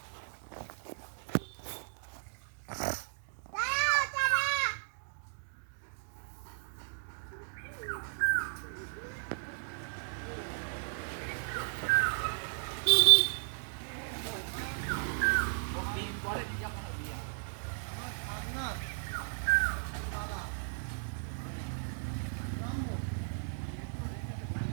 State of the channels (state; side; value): silent; left; digital silence